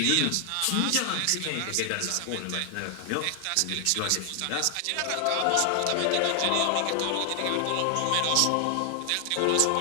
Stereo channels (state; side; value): different; both; correlation 0.00